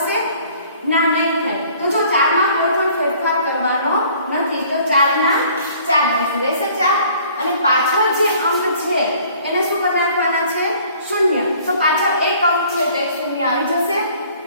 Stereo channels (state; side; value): inverted; both; correlation -0.55